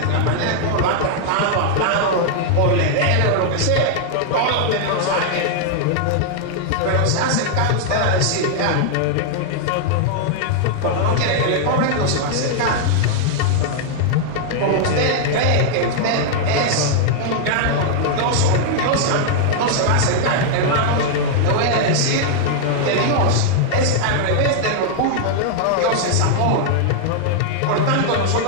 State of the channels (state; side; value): different; both; correlation 0.00